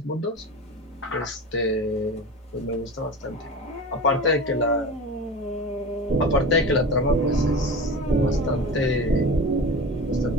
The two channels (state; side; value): normal; both; correlation 0.31